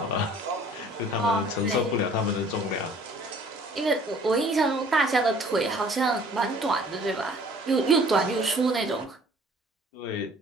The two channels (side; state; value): both; normal; correlation 0.54